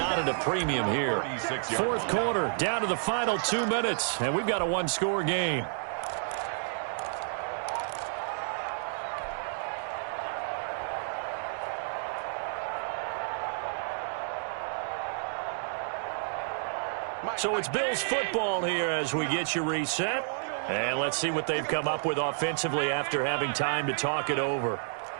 at a premium here. 4th quarter, down to the final 2 minutes, and we've got a 1-score game. So it's Bills football here as we get you reset. And let's see what they've come up with offensively after having time to talk it over.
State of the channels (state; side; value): silent; left; digital silence